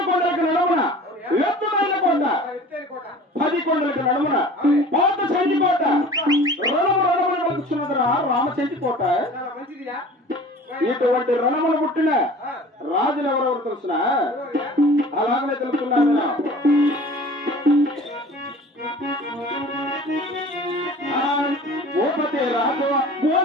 కొండలకు నడుమున ఎత్తుమైన కోట 10 కొండలకు నడుమున పాత చెంటి కోట రణమున వలుచున్నదిరా రామచెంటి కోట ఇటువంటి రణములు పుట్టిన రాజులు ఎవరెవరు తెలుసిన అలాగనే తెలుసుకున్నాను భూపతి రాజు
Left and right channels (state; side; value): normal; both; correlation 0.43